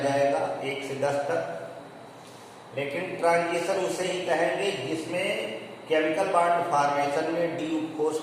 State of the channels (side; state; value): both; identical; correlation 1.00